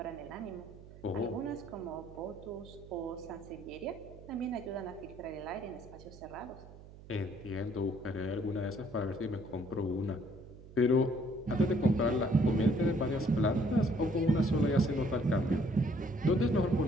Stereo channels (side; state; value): right; noise; hum, 18 dB below the sound